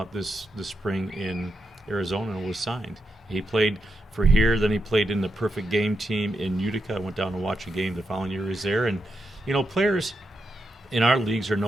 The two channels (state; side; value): normal; both; correlation 0.85